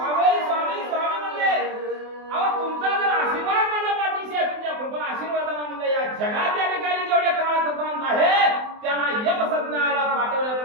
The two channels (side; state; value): left; late; 24 ms